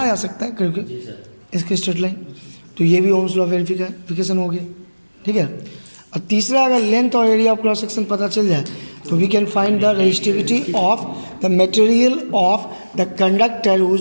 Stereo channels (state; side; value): inverted; both; correlation -1.00